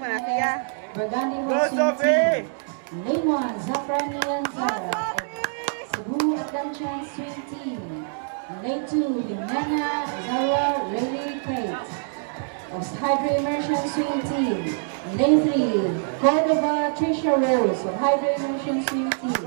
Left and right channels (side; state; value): left; silent; digital silence